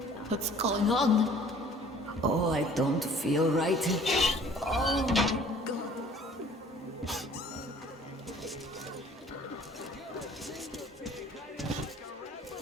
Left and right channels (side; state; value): both; normal; correlation 0.52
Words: what's going on? Oh, I don't feel right. Oh my God.